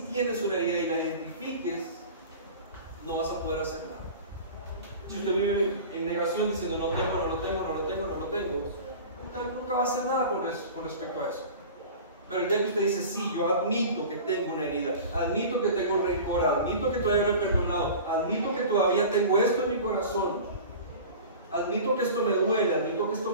tienes una herida y la identifiques, no vas a poder hacer nada. Si usted vive en negación diciendo no tengo, nunca va a hacer nada con respecto a eso. Pero el día que usted dice, sí, yo admito que tengo una herida, admito que tengo rencor, admito que todavía no he perdonado, admito que todavía tengo esto en mi corazón, admito que esto me duele, admito que esto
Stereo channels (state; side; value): inverted; both; correlation -0.37